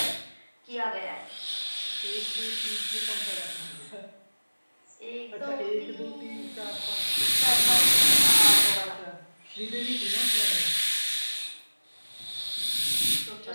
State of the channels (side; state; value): both; inverted; correlation -1.00